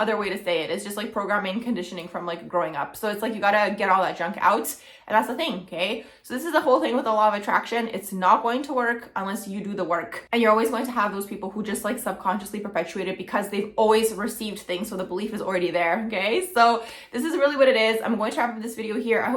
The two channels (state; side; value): identical; both; correlation 1.00